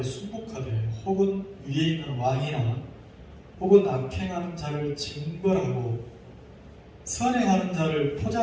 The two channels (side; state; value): both; identical; correlation 1.00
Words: 혹은 위에 있는 왕이나 혹은 악행하는 자를 징벌하고 선행하는 자를